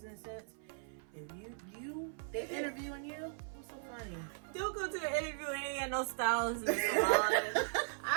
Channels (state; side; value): silent; left; 52 dB below the other